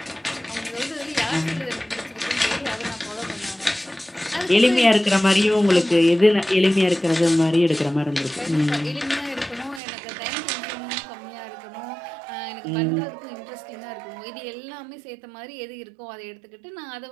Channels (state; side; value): drops out; left; at 9.8 s